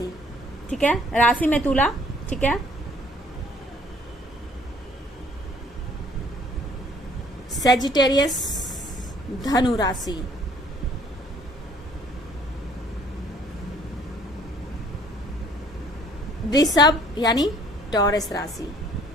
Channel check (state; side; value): normal; both; correlation 0.58